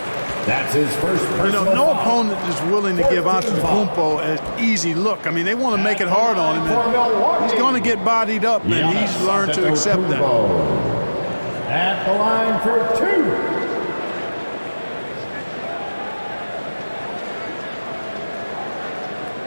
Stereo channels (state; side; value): inverted; both; correlation -1.00